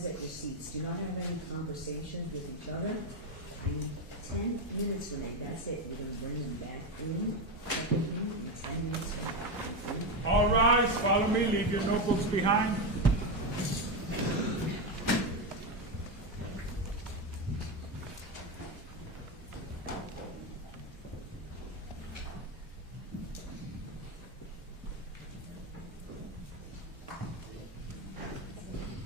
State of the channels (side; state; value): both; normal; correlation 0.11